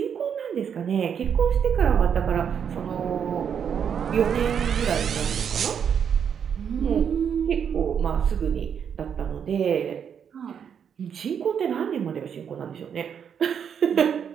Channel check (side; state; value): left; quieter; 7.7 dB